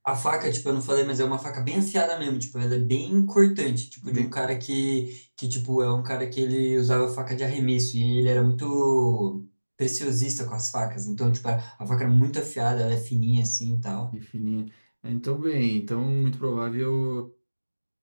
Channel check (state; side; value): inverted; both; correlation -1.00